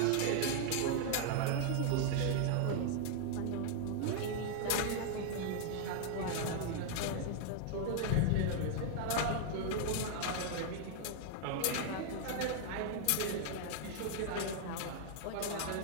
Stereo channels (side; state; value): both; different; correlation 0.00